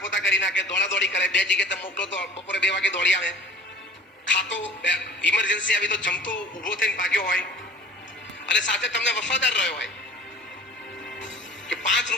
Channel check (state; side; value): normal; both; correlation 0.44